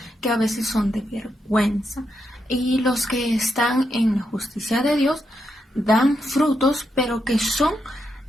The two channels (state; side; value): normal; both; correlation 0.83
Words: que a veces son de vergüenza. Y los que están en la justicia de Dios dan frutos, pero que son